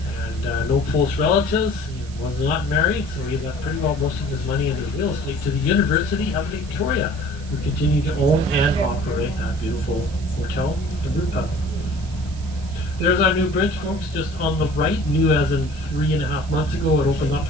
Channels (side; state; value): right; noise; hiss, 20 dB below the sound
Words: and no close relatives. He was not married, so he left pretty well most of his money into real estate to the University of Victoria, who continue to own and operate that beautiful hotel and brew pub. There's our new bridge, folks, just on the right, new as in 3.5 months ago. It opened up